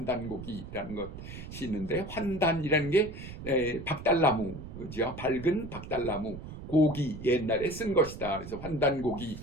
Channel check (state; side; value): noise; right; rumble, 11 dB below the sound